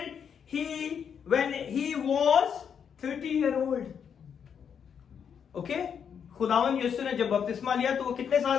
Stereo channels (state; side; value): quieter; right; 7.5 dB